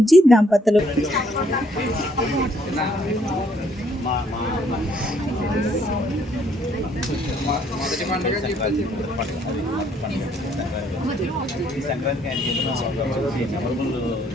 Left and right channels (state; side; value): normal; both; correlation 0.67